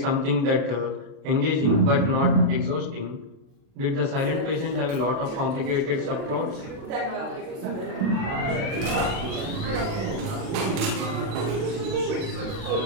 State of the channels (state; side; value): late; left; 36 ms